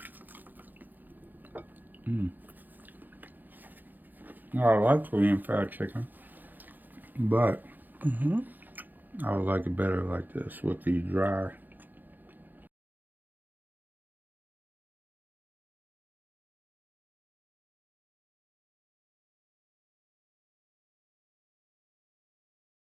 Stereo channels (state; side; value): late; left; 0.086 ms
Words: I like Korean fried chicken, but I would like it better like this with the dry